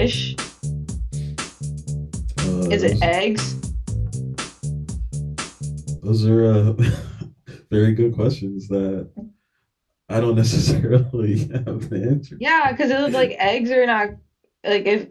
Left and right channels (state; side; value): identical; both; correlation 1.00